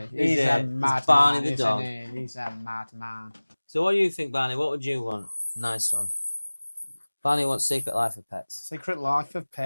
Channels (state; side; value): inverted; both; correlation -1.00